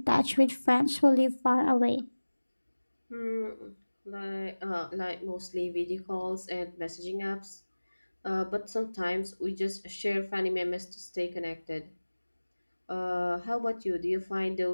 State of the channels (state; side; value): inverted; both; correlation -1.00